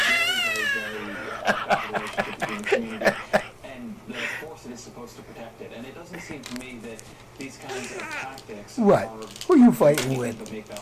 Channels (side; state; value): both; identical; correlation 1.00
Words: Very bad relationship between the community and the force that is supposed to protect it. And it doesn't seem to me that these kinds of tactics What? are Who are you fighting with? to make